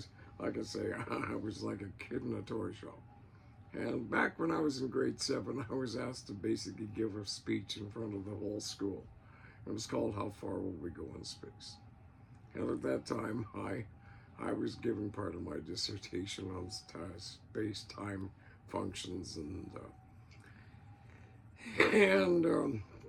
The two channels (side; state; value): both; identical; correlation 1.00